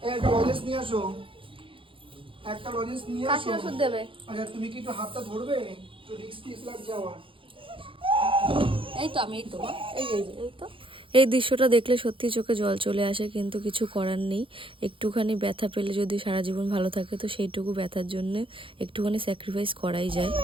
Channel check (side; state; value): left; late; 0.25 ms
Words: একটা লজেন্স নিয়ে আসো, একটা লজেন্স নিয়ে আসো। কাশি ওষুধ দেবে। আচ্ছা তুমি কি একটু হাতটা ধরবে? একটু রিস্ক লাগছে আমার। এই তো আমি, এই তো এই তো। এই দৃশ্যটা দেখলে সত্যি চোখে জল চলে আসে, কিন্তু কিছু করার নেই। একটুখানি ব্যথা পেলে যদি সারা জীবন ভালো থাকে, তো সেইটুকু ব্যথার জন্য একটুখানি স্যাক্রিফাইস করাই যায়।